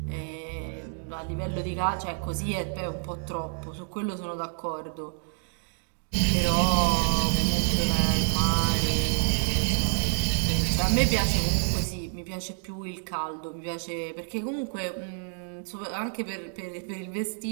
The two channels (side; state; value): left; silent; 59 dB below the other